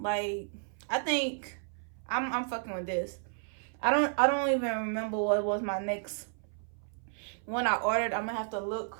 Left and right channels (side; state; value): left; silent; 56 dB below the other